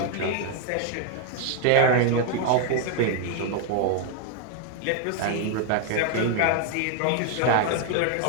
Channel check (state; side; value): different; both; correlation 0.00